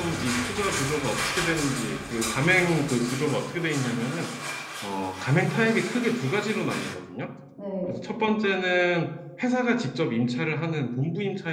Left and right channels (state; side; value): identical; both; correlation 1.00